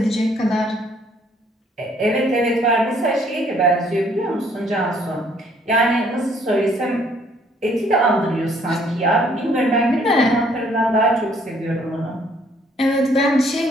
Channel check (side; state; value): both; normal; correlation 0.63